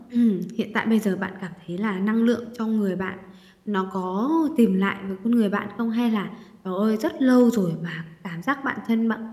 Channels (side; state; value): both; identical; correlation 1.00